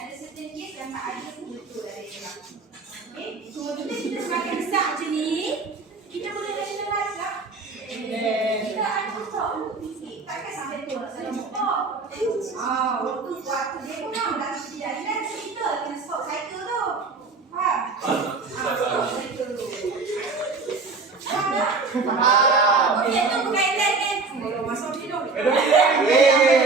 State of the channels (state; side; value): quieter; left; 4.1 dB